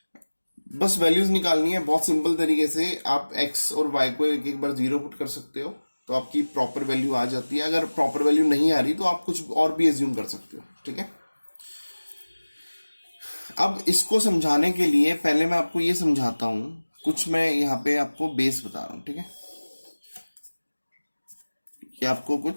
बस वैल्यूज निकालनी है बहुत सिंपल तरीके से. आप x और y को एक बार 0 पुट कर सकते हो तो आपकी प्रॉपर वैल्यू आ जाती है. अगर प्रॉपर वैल्यू नहीं आ रही तो आप कुछ और भी एज्यूम कर सकते हो. ठीक है, अब इसको समझाने के लिए पहले मैं आपको ये समझाता हूं. कुछ मैं यहाँ पे आपको बेस बता रहा हूं. ठीक है, ये आपको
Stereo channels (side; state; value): both; inverted; correlation -1.00